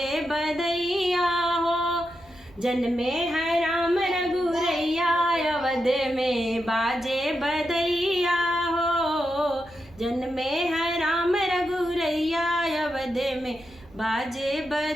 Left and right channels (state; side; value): noise; right; rumble, 26 dB below the sound